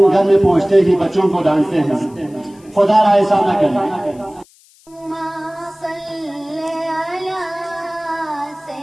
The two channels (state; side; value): noise; left; hiss, 29 dB below the sound